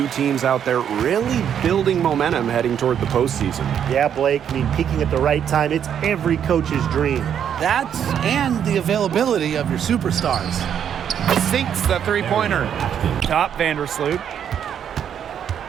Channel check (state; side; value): quieter; left; 8.8 dB